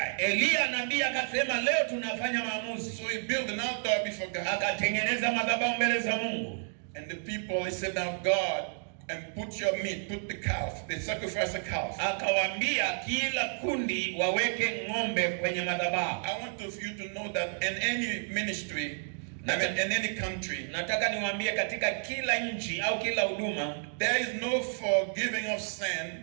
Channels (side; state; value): left; silent; 57 dB below the other